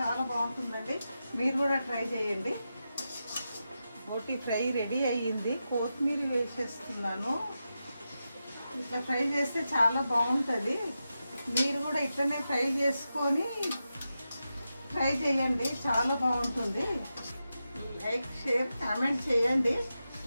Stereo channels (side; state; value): both; inverted; correlation -0.90